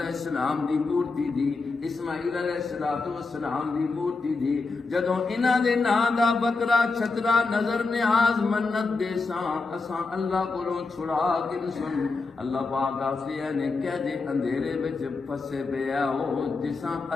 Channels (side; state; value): right; quieter; 4.0 dB